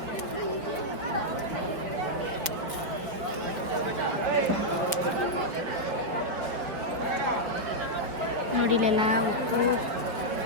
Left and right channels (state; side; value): late; left; 5.3 ms